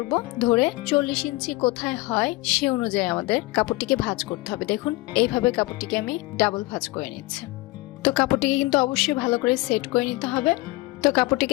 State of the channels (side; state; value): right; quieter; 21.1 dB